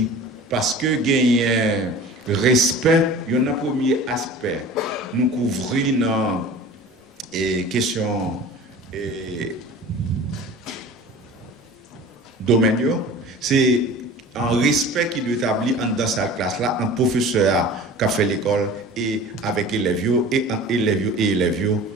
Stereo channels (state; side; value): normal; both; correlation 0.40